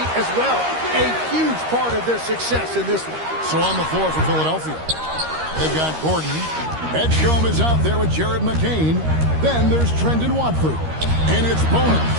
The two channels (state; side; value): late; left; 13 ms